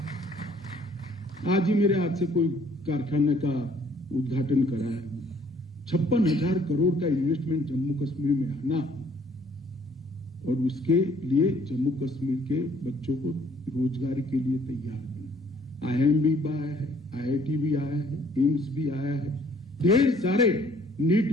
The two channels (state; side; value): normal; both; correlation 0.60